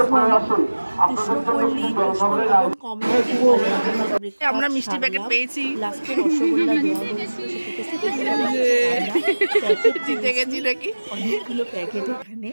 আমরা মিষ্টি প্যাকেট পেয়েছি, লাস্টে রসগোল্লা জিতে গেছি নাকি অনেকগুলো প্যাকেট এখানে।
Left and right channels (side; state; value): both; inverted; correlation -1.00